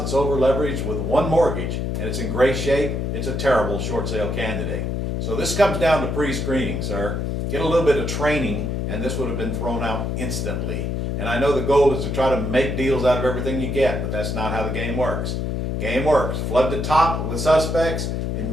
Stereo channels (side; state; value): left; noise; hum, 1 dB below the sound